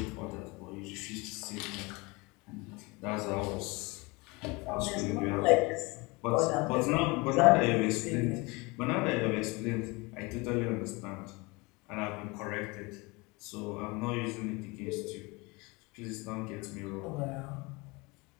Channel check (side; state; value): right; quieter; 25.8 dB